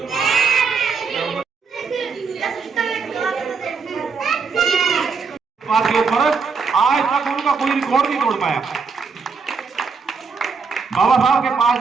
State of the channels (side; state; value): left; quieter; 5.2 dB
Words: के फर्क आज तक उनका कोई रिकॉर्ड नहीं तोड़ पाया। बाबा साहब के पास